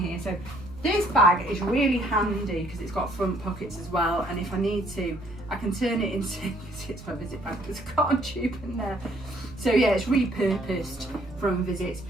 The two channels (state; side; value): noise; right; hum, 19 dB below the sound